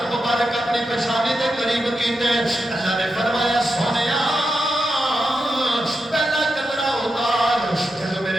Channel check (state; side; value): normal; both; correlation 0.87